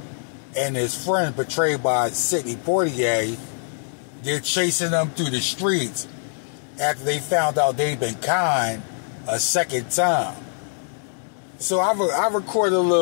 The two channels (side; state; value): right; silent; 63 dB below the other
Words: and his friend, portrayed by Sidney Poitier. They're chasing them through the streets after they found out they'd been conned a second time. So I recorded a